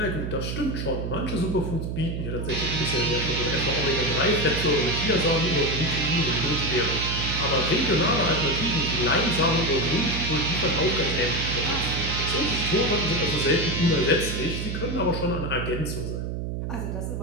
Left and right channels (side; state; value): right; noise; hum, 4 dB below the sound